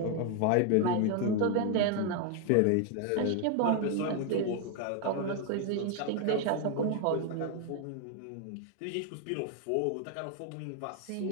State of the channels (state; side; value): different; both; correlation 0.01